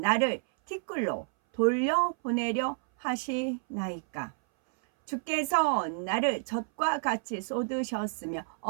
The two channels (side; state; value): left; silent; 58 dB below the other